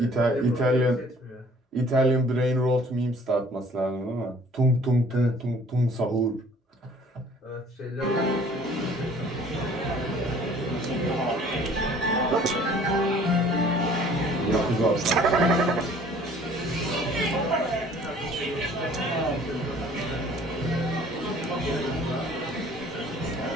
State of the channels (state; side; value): normal; both; correlation 0.54